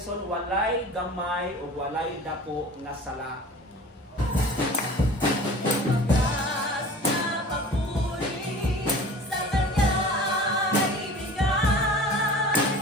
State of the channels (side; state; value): both; normal; correlation 0.41